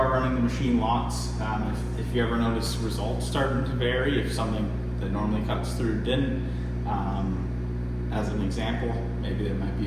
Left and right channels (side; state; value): both; identical; correlation 1.00